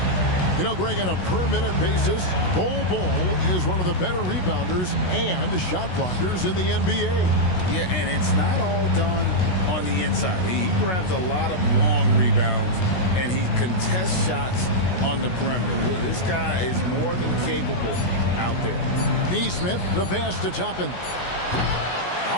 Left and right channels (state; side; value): late; right; 16 ms